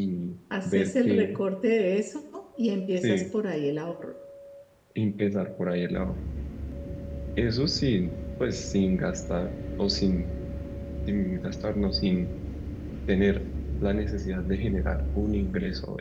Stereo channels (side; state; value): both; identical; correlation 1.00